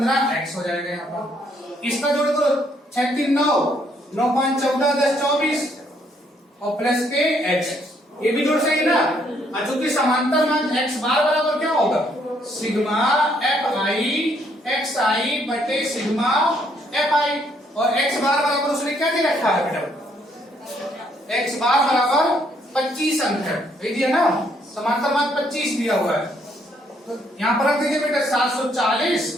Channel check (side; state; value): both; normal; correlation 0.69